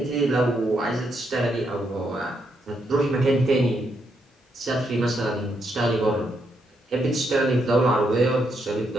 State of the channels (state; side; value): normal; both; correlation 0.78